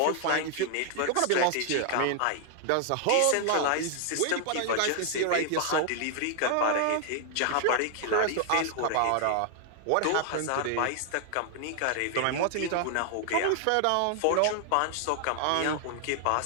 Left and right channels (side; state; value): both; different; correlation 0.00